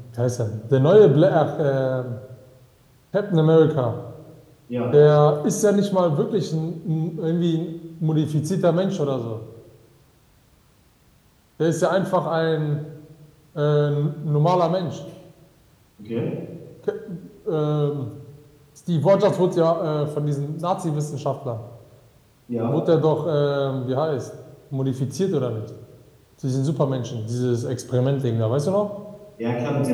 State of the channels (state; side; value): identical; both; correlation 1.00